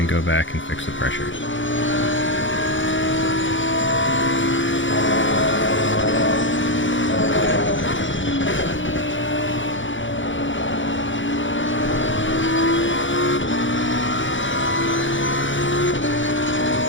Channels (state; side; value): late; right; 0.56 ms